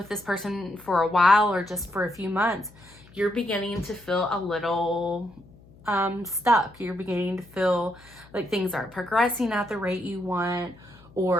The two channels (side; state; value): left; noise; hum, 24 dB below the sound